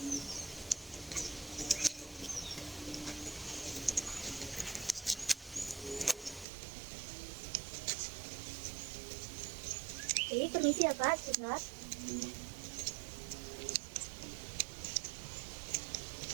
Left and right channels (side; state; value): left; drops out; at 6.5 s